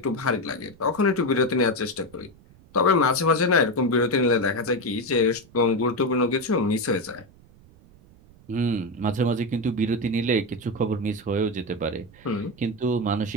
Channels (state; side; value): noise; right; rumble, 25 dB below the sound